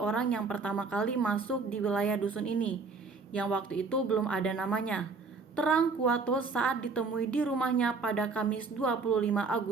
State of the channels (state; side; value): quieter; left; 4.4 dB